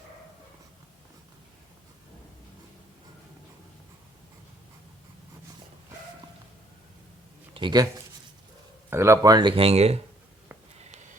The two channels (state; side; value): normal; both; correlation 0.64